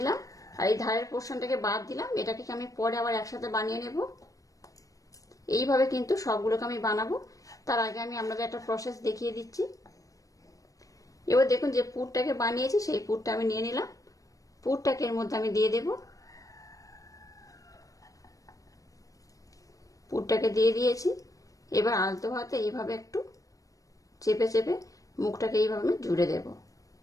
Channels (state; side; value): late; right; 0.16 ms